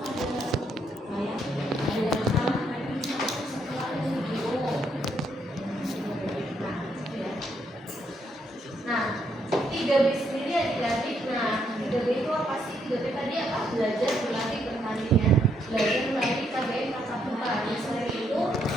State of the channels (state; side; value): normal; both; correlation 0.74